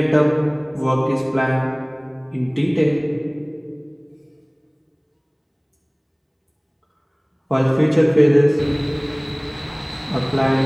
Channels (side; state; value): both; identical; correlation 1.00